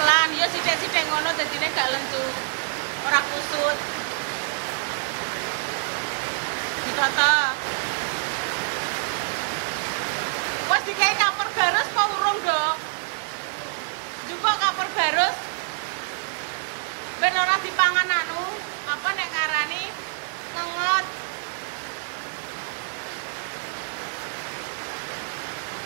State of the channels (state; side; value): silent; left; 58 dB below the other